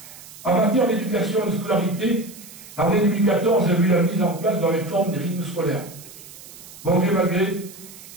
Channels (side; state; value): right; noise; hiss, 18 dB below the sound